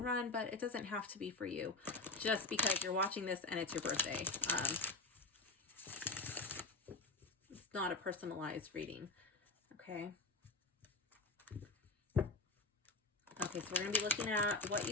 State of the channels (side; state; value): right; quieter; 3.3 dB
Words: run, but it doesn't have to be for you just because you're watching this and it's your birthday. It's not a personalized reading. Okay. Okay, so we're going to be looking at what